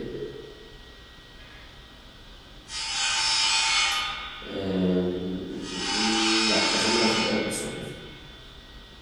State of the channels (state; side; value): identical; both; correlation 1.00